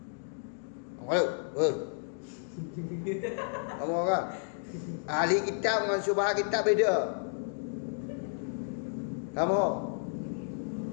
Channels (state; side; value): silent; right; digital silence